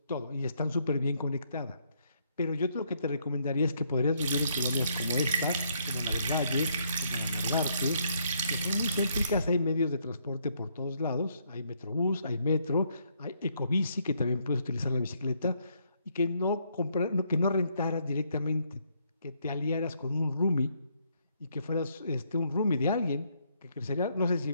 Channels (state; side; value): inverted; both; correlation -0.72